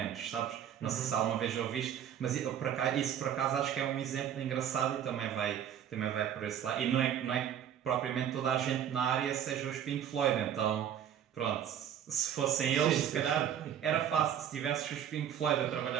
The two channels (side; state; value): left; quieter; 9.5 dB